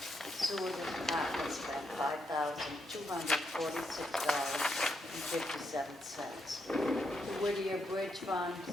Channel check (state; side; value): normal; both; correlation 0.80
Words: Sewer department spent $5,246.57. The Whittier Bridge Fund